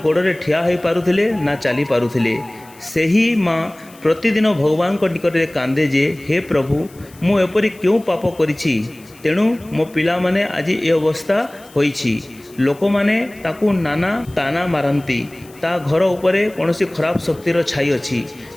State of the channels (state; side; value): noise; left; hiss, 25 dB below the sound